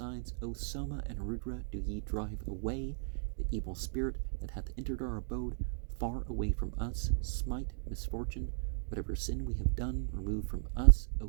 O Soma and Rudra, do ye drive away the evil spirit that hath entered our abode far away from us. Smite misfortune, whatever sin we have done, remove from us.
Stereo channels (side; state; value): left; silent; digital silence